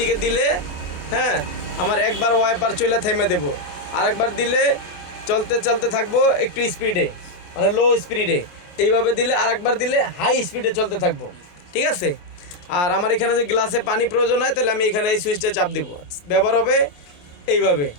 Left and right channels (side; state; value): right; late; 28 ms